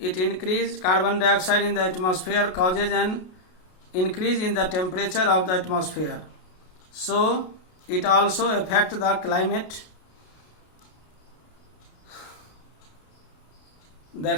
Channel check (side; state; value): right; late; 33 ms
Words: increased carbon dioxide in the atmosphere causes an increase in the temperature of the atmosphere. So it also affect the climate.